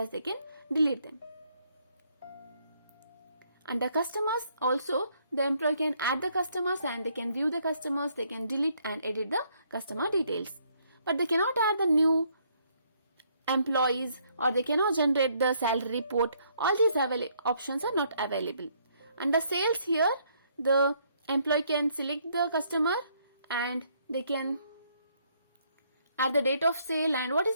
they can delete them. Under customers also, the employee can add the customers and they can view the customers, they can delete and edit the customer details. But they cannot add the new employees or they cannot generate the salary report. All these options are not available. Under sales here, the employee can select the customer and they can add the date of sale and what is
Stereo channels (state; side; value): inverted; both; correlation -0.69